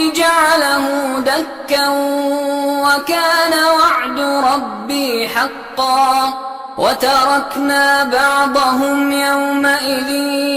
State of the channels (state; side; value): identical; both; correlation 1.00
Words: جعله دكا وكان وعد ربي حقا. وتركنا بعضهم يومئذ